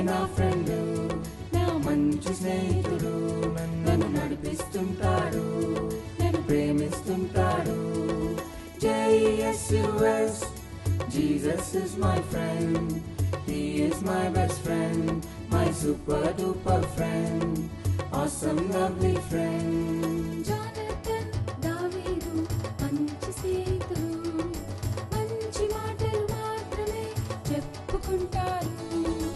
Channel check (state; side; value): identical; both; correlation 1.00